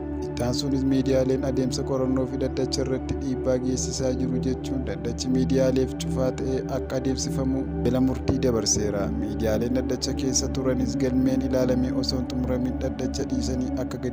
Ittaansuunis miidiyaaleen adeemsa qorannoo fi dhaddacha irratti dhiibbaa geessisaa jiru jechuun dhaddachi miidiyaaleef cufaa ta'ee akka adeemsifamu jala murtii dabarseera. Miidiyaaleen dhaddacha keessa turanis galmeen ilaalamee osoo hin xumuramin dhaddacha dhiisanii akka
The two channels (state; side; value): identical; both; correlation 1.00